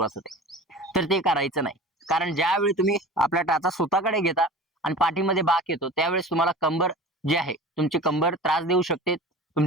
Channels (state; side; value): normal; both; correlation 0.37